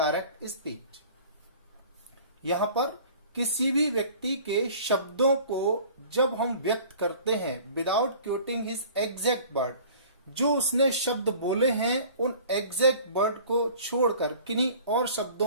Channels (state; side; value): inverted; both; correlation -0.47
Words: speech. यहां पर किसी भी व्यक्ति के शब्दों को जब हम व्यक्त करते हैं विदाउट क्वोटिंग हिज एग्जैक्ट वर्ड, जो उसने शब्द बोले हैं उन एग्जैक्ट वर्ड को छोड़कर किन्हीं और